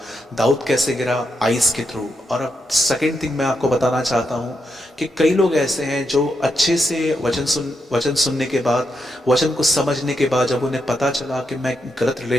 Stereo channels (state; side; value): normal; both; correlation 0.83